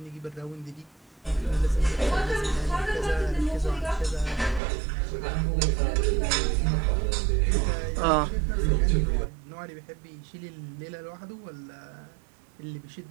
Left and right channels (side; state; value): left; drops out; at 4.6 s